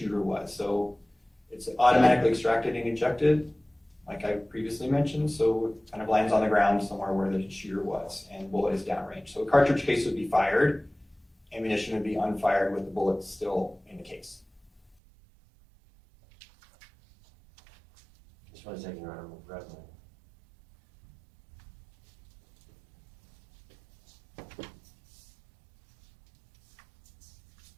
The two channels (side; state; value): left; drops out; at 15.0 s